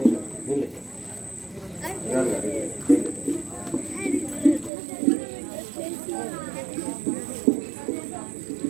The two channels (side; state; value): left; drops out; at 4.7 s